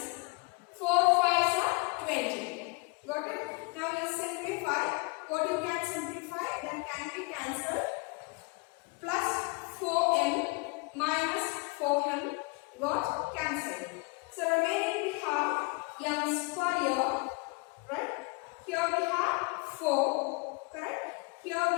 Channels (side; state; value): right; quieter; 29.0 dB